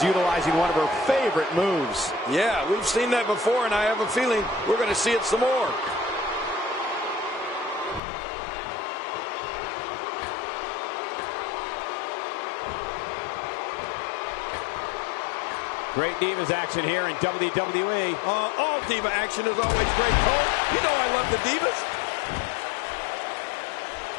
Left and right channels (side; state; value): right; drops out; at 8.0 s